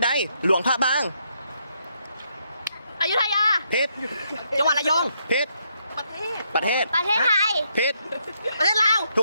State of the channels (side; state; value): both; inverted; correlation -0.76